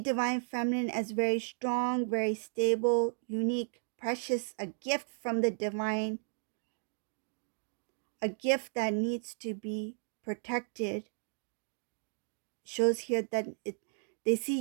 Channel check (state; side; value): silent; left; 55 dB below the other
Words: feminine as very strong, very stable, unique, precious, a gift from the divine, a gift that needs to be protected. Shows here that they